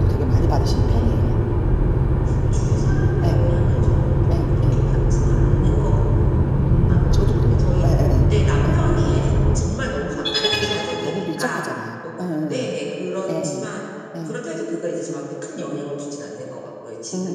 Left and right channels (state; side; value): identical; both; correlation 1.00